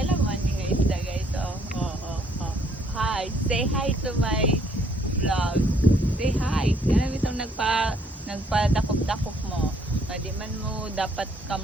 man ni guys da guys. Oh. Hi. Say hi to my vlog. Say hi. Kaya bitong nagpadakop-dakop mo. Di man mo dapat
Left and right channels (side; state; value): both; normal; correlation 0.66